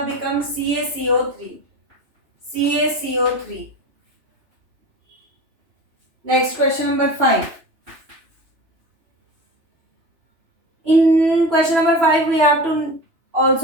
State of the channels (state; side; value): late; left; 2.9 ms